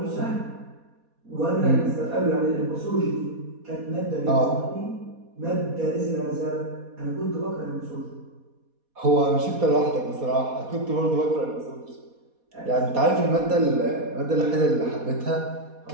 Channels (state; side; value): late; left; 4.2 ms